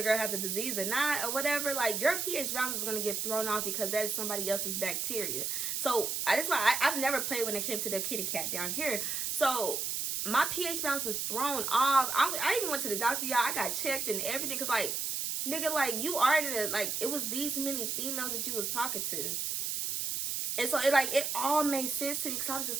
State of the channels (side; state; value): right; noise; hiss, 1 dB below the sound